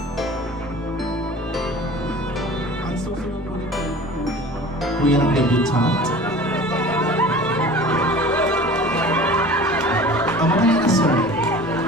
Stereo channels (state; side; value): normal; both; correlation 0.42